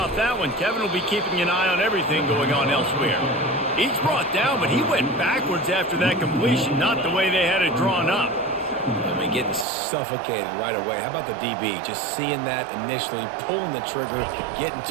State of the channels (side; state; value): left; drops out; at 9.7 s